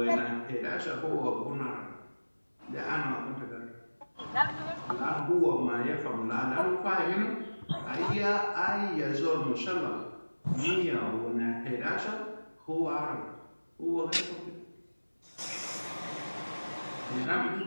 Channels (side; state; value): both; inverted; correlation -1.00